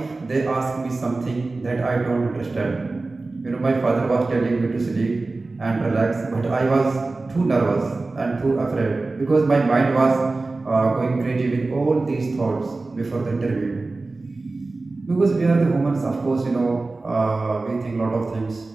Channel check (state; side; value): quieter; left; 3.4 dB